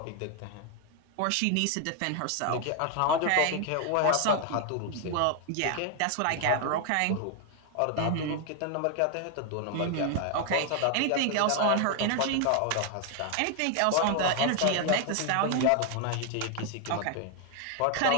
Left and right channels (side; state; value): both; different; correlation 0.00